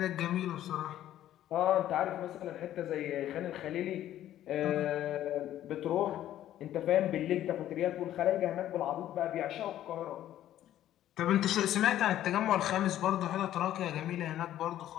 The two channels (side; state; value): right; quieter; 12.4 dB